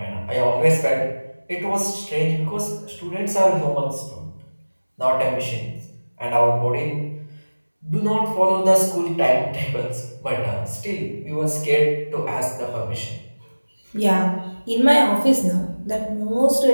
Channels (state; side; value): inverted; both; correlation -1.00